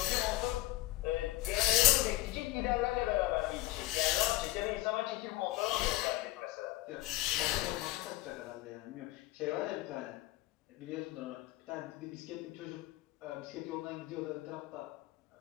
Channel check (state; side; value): quieter; right; 17.0 dB